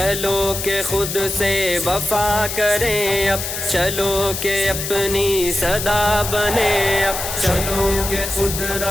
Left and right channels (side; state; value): left; noise; hiss, 5 dB below the sound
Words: کہ خود سے وفا کریں اب، چلو کہ اپنی صدا بنے اب، چلو کہ خود